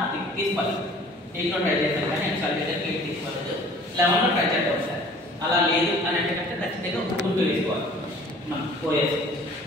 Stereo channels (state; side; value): normal; both; correlation 0.50